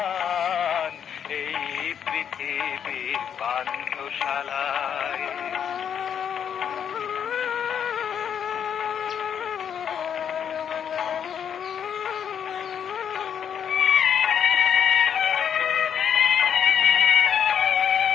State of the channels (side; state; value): right; quieter; 8.3 dB